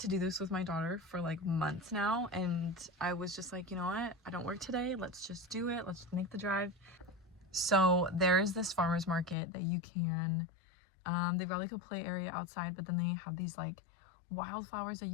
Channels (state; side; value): drops out; right; at 9.3 s